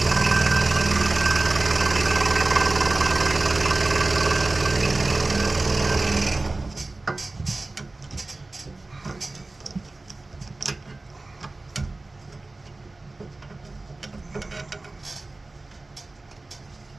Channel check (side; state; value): left; quieter; 3.1 dB